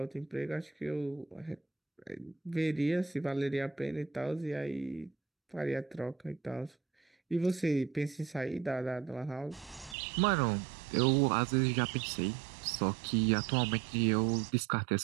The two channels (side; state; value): left; drops out; at 10.0 s